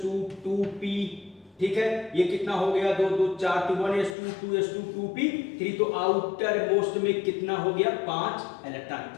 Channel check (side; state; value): right; drops out; at 4.2 s